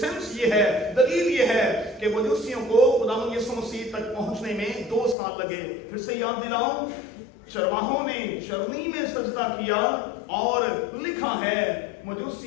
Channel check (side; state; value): right; drops out; at 5.2 s